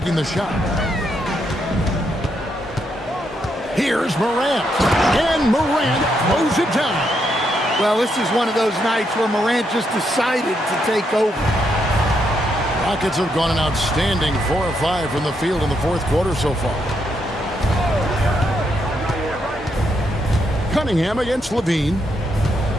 the shot. Here's Morant. And Morant throws it down. Well, this is one of those nights where Morant just decided to take over. Rockets have gone an outstanding 4 of 5 from the field in the fourth quarter so far. Cunningham against Levine.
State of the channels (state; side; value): normal; both; correlation 0.78